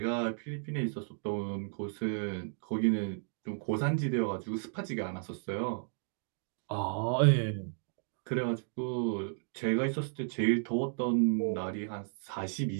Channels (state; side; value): silent; left; digital silence